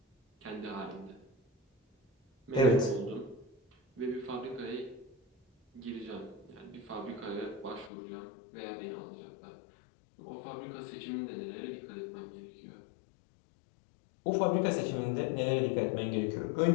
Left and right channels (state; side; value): drops out; right; at 7.9 s